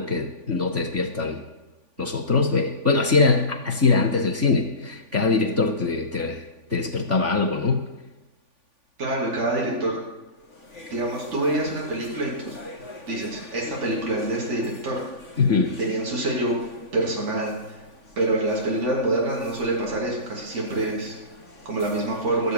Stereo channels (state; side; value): late; left; 3.5 ms